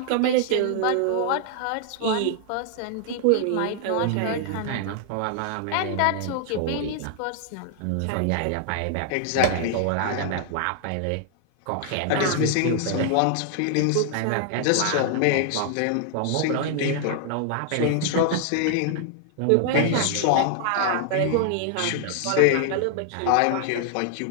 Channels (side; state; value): both; different; correlation 0.00